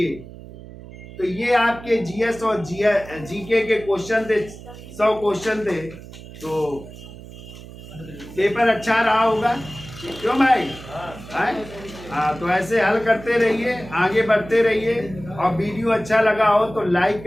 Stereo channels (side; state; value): right; noise; hum, 16 dB below the sound